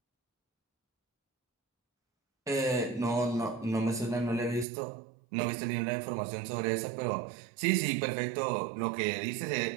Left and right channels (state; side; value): drops out; left; at 4.7 s